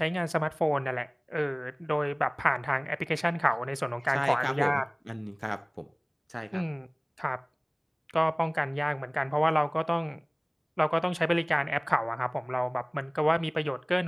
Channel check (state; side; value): identical; both; correlation 1.00